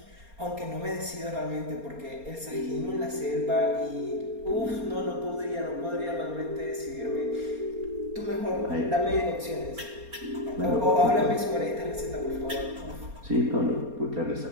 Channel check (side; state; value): left; late; 4.3 ms